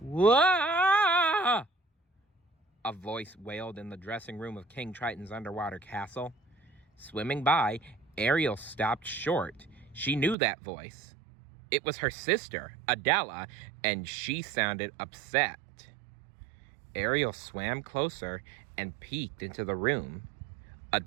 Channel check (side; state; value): left; drops out; at 10.4 s